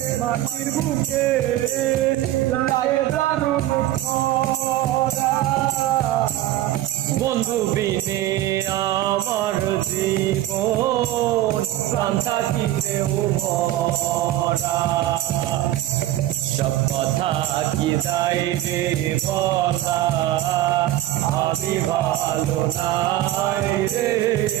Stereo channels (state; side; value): quieter; left; 14.2 dB